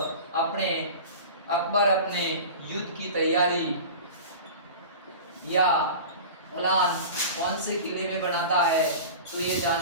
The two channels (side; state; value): both; inverted; correlation -0.34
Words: अकबर अपने युद्ध की तैयारी या प्लान कौन से किले में बनाता है, तो ये